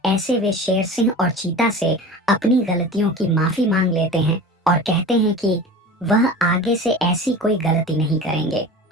ऐसे वे शेर सिंह और चीता से अपनी गलतियों की माफी मांग लेते हैं और कहते हैं कि वह आगे से ऐसी कोई गलती नहीं करेंगे,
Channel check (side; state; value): both; normal; correlation 0.35